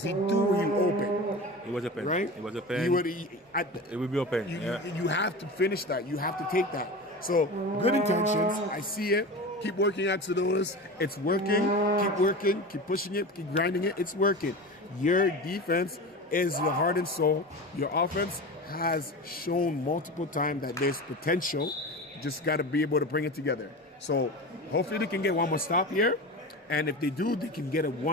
he threw you open. It was open. Right? It was open. It would be open. You have to finish that. You have to take that. So, good intentions. I see it. Keep working Axolotls. It's working. Keep working. Keep pushing it. Keep grinding it. It's working. Your defense is your heart and soul. Your offense has shown multiple times that there's potential. Just got to be able to bring it together. So hopefully they can get one more stop here. And if they do, they can get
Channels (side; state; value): both; normal; correlation 0.29